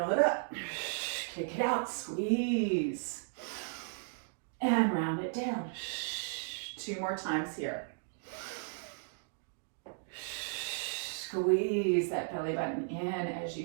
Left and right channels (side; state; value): left; silent; digital silence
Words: it up. Kick it out. Squeeze. And round it down. 2 more times here. Squeeze that belly button in as